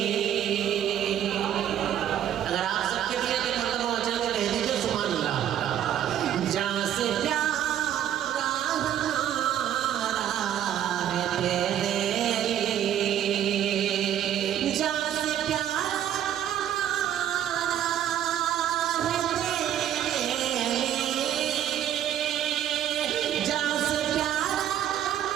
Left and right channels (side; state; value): left; quieter; 10.6 dB